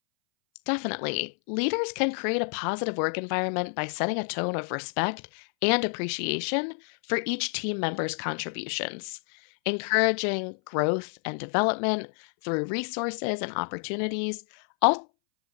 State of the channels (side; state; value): right; silent; 59 dB below the other